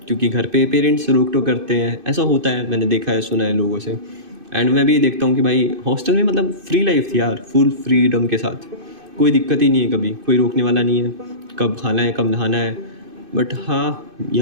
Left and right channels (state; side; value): late; left; 2.5 ms